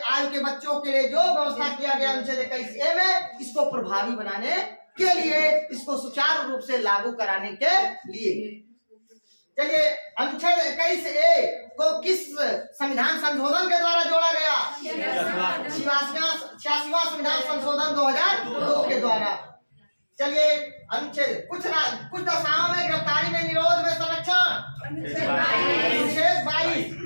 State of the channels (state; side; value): inverted; both; correlation -1.00